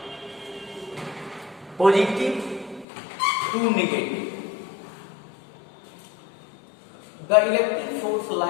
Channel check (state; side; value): drops out; right; at 2.9 s